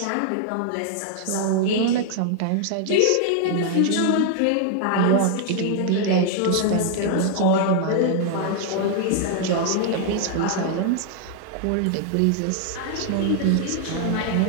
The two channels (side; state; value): both; different; correlation 0.00